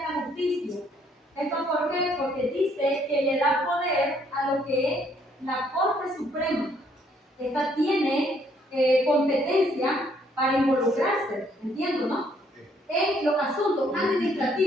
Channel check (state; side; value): normal; both; correlation 0.67